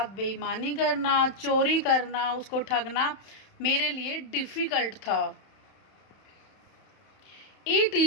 बेईमानी करना, चोरी करना, उसको ठगना मेरे लिए डिफ़िकल्ट था। It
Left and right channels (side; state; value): right; late; 31 ms